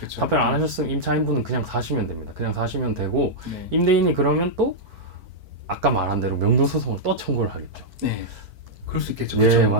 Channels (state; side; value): late; left; 4.5 ms